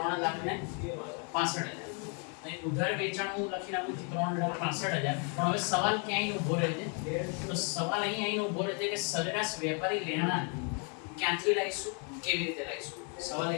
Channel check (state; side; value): quieter; right; 37.6 dB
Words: અહીં ઉધાર વેચાણ હું લખી નાખું છું 3,65,000. પણ હવે સવાલ ક્યાંય ઊભો રહે છે? તો સવાલ અહીં ઊભો રહે છે કે સરેરાશ વેપારી લેણા ક્યાંથી લાવીશું, કેવી રીતે લાવીશું? સવાલ